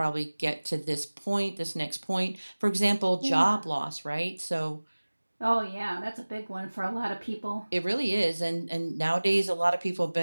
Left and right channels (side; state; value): both; inverted; correlation -1.00